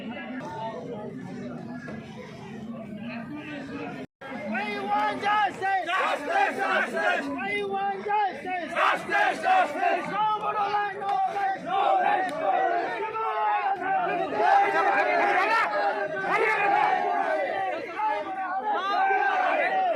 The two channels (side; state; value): both; identical; correlation 1.00